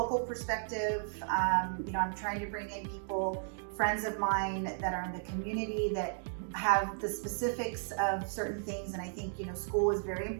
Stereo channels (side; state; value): left; silent; digital silence